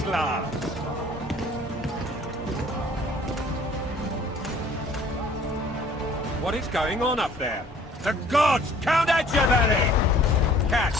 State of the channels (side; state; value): both; normal; correlation 0.54